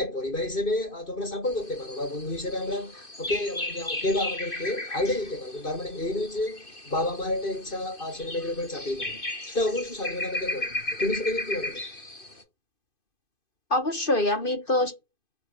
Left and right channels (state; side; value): late; right; 2.5 ms